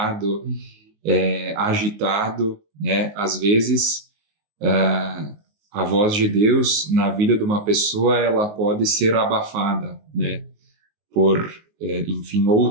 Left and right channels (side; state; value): left; late; 19 ms